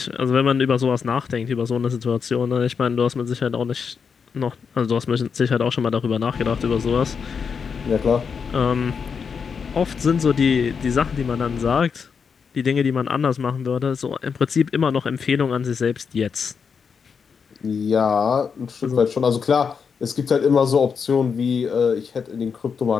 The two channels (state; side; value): quieter; right; 6.1 dB